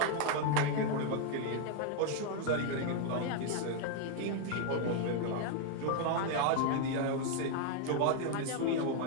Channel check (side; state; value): both; different; correlation 0.00